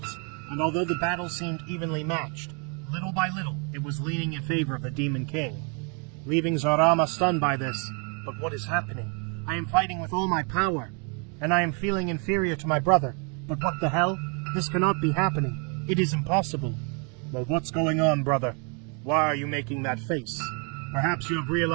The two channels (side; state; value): left; quieter; 36.7 dB